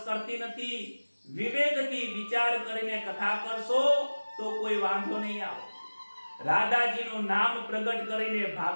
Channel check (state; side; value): inverted; both; correlation -1.00